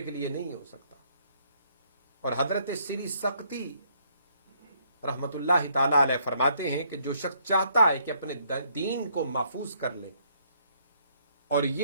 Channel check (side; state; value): both; inverted; correlation -0.69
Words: کے لیے نہیں ہو سکتا۔ اور حضرت سری سقطی رحمت اللہ تعالی علیہ فرماتے ہیں کہ جو شخص چاہتا ہے کہ اپنے دین کو محفوظ کر لے، اور